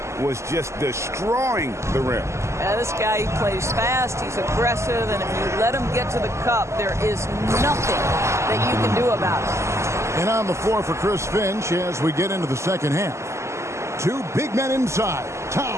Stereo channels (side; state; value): left; late; 0.13 ms